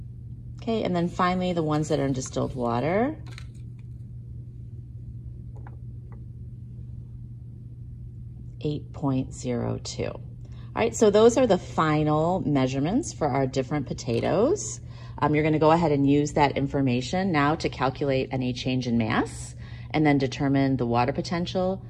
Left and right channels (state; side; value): identical; both; correlation 1.00